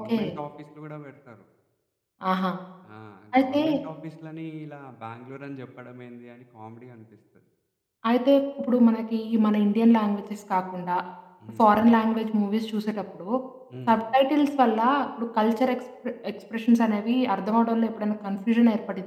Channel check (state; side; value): identical; both; correlation 1.00